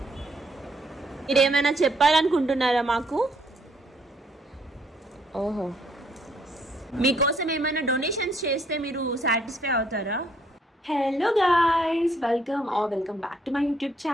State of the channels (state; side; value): normal; both; correlation 0.69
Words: మీరేమైనా చెప్పాలనుకుంటున్నారా మాకు? ఓహో, మీకోసం ఏమైనా డొనేషన్స్ చేస్తే మీరు సాటిస్ఫై అవుతారా? Hello guys, welcome back to my YouTube